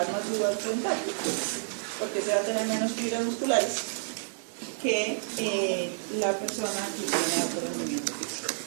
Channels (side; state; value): left; silent; digital silence